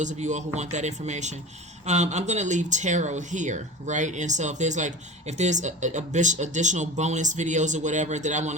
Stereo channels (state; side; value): normal; both; correlation 0.32